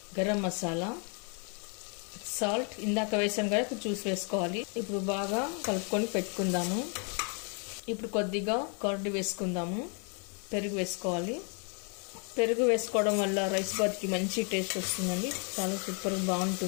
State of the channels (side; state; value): right; quieter; 38.6 dB